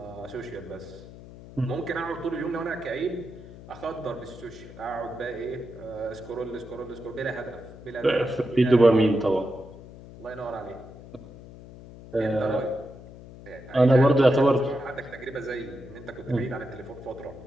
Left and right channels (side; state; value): left; noise; hum, 17 dB below the sound